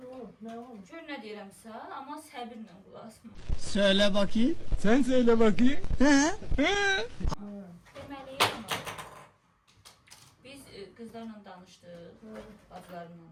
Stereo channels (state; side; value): identical; both; correlation 1.00